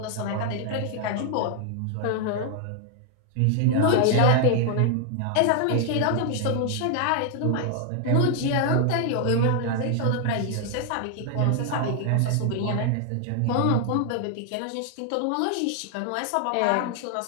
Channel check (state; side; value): different; both; correlation 0.00